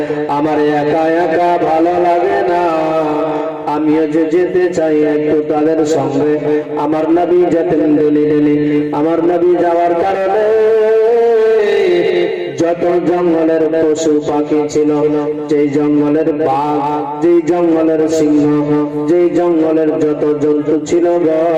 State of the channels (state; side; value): identical; both; correlation 1.00